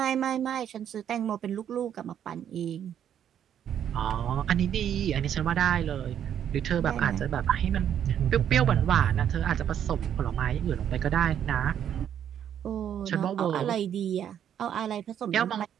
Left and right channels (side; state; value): left; quieter; 9.5 dB